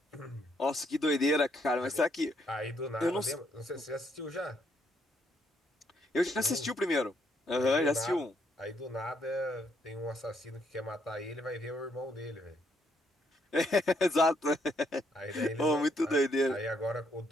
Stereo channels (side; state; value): both; normal; correlation 0.73